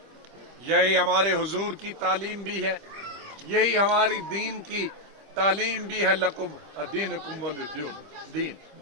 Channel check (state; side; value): late; left; 25 ms